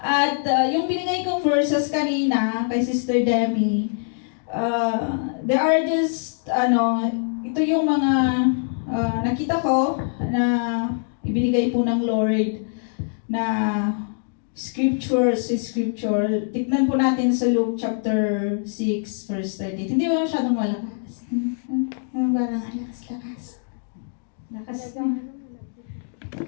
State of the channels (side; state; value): right; silent; digital silence